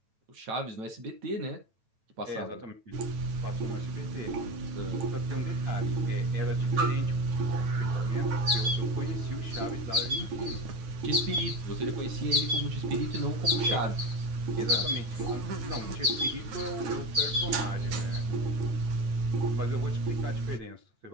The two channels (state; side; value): late; left; 9.0 ms